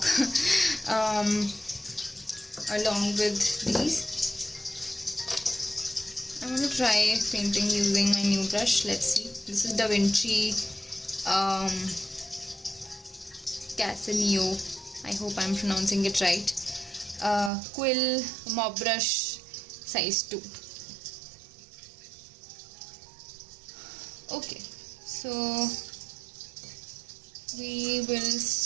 along with these. I'm going to try painting using my new brush. Let's see. This is Da Vinci Casaneo. I hope I'm pronouncing it right. Quill Mob Brush size 2. Okay, so we will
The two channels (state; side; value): drops out; left; at 17.5 s